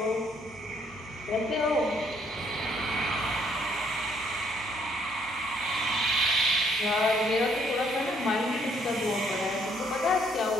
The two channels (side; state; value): both; normal; correlation 0.67